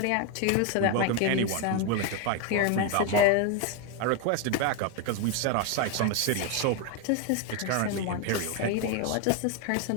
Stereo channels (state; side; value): different; both; correlation 0.02